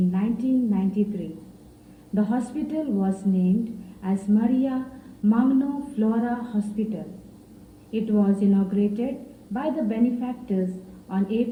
1993. The hospital was named as Maria Magno Flora Hospital. It was inaugurated by the benefactors on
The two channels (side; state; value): both; identical; correlation 1.00